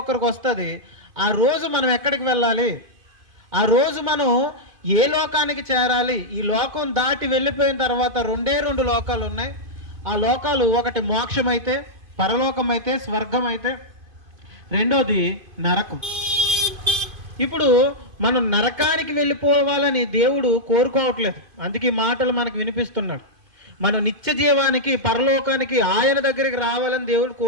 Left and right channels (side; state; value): left; late; 2.5 ms